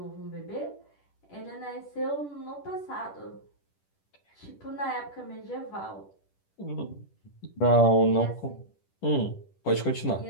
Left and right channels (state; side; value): late; right; 10 ms